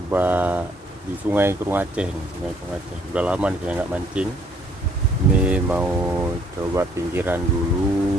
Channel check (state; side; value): normal; both; correlation 0.63